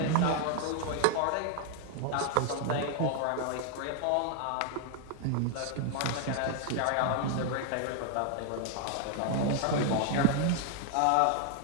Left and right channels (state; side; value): different; both; correlation 0.00